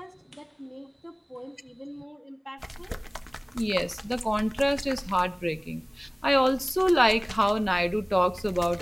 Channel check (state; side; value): identical; both; correlation 1.00